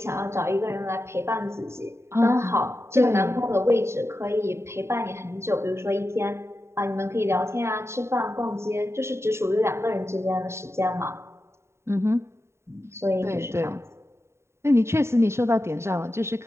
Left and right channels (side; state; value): left; late; 0.13 ms